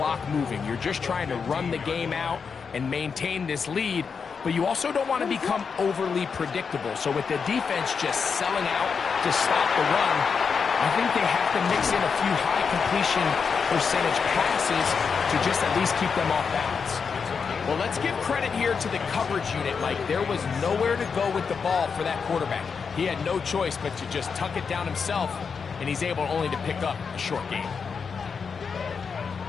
moving. You're just trying to run the game out and maintain this lead, but you also don't want to become overly predictable. So with the defense just selling out to stop the run, I think they have to mix in a few high completion percentage passes to just at least keep them off balance. Well, let's give credit here to the coverage unit, Mike. There was nowhere to go with the ball for that quarterback. He had no choice but to just tuck it down himself, and he's able only to pick up a short gain.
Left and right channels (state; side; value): quieter; right; 5.8 dB